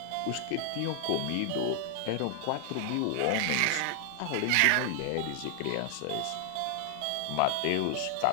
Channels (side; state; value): both; different; correlation 0.00